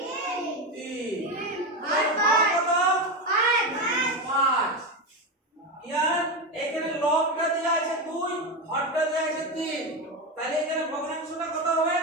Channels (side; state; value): both; normal; correlation 0.15